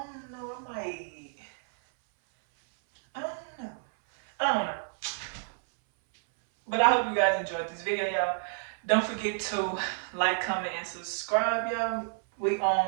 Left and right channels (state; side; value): silent; left; 58 dB below the other